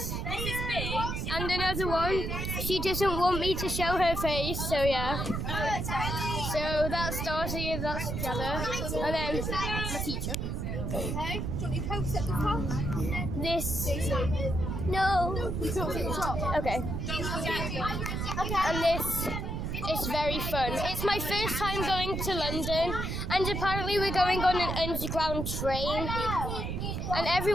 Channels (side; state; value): right; noise; rumble, 2 dB below the sound